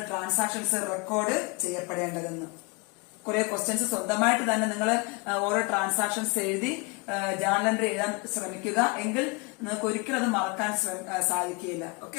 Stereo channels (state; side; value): quieter; right; 29.5 dB